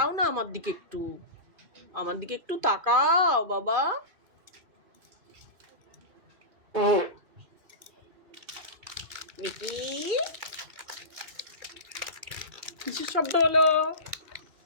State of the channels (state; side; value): late; left; 2.4 ms